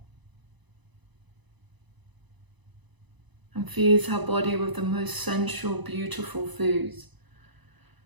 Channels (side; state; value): left; late; 1.0 ms